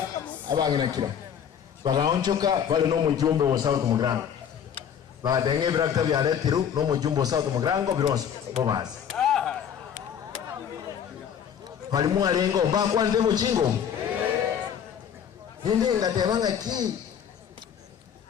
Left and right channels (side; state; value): right; quieter; 8.4 dB